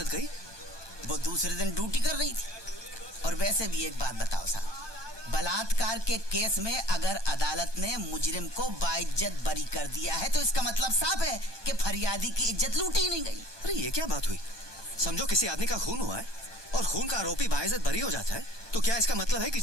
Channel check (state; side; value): late; left; 1.2 ms